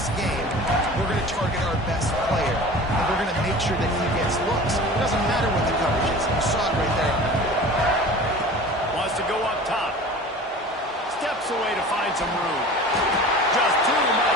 game, we're going to target our best player, and we're going to make sure that he gets looks. It doesn't matter what the coverage is. You saw it right there. Wants to go up top. Steps steps away to find some room. Just too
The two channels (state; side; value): normal; both; correlation 0.39